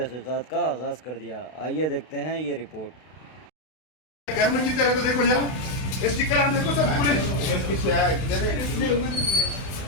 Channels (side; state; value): right; late; 32 ms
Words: का आगाज़ कर दिया। आइए देखते हैं ये रिपोर्ट। घर में जीते रहे तो देखो जरा स्टिकर आ देखो सर पूरे